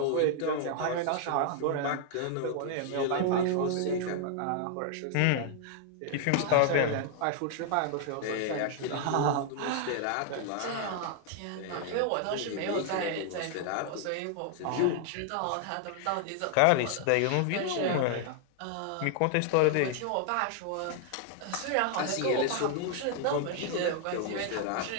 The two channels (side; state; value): both; different; correlation 0.00